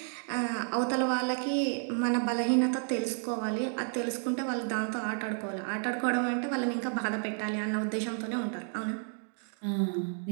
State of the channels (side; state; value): left; silent; 57 dB below the other